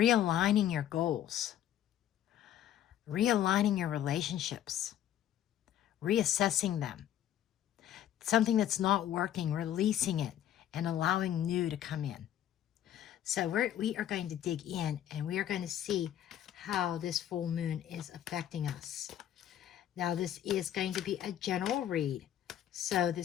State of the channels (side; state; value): right; quieter; 11.2 dB